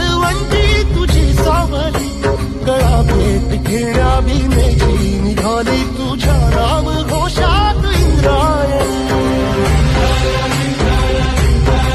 तुझी सावली गळा भेट घेण्या भीमेची निघाली तुझ्या राम घोषात इंद्रायणी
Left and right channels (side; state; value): both; identical; correlation 1.00